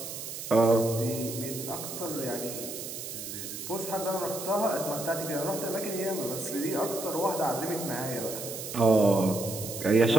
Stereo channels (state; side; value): noise; right; hiss, 8 dB below the sound